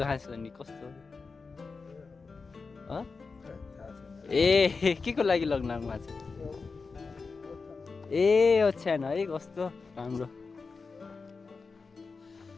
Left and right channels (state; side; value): quieter; right; 4.5 dB